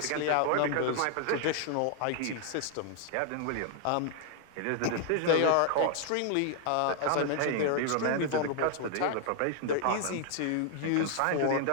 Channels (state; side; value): different; both; correlation 0.00